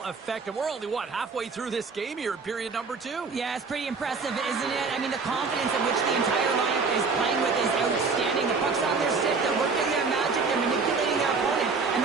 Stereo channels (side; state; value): left; quieter; 4.6 dB